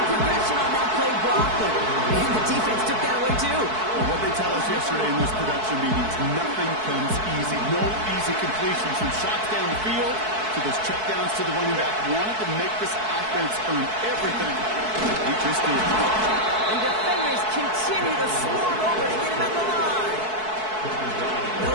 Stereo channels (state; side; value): late; left; 4.6 ms